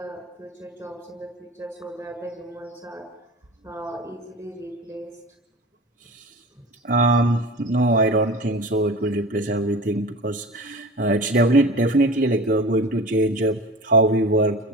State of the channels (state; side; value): normal; both; correlation 0.35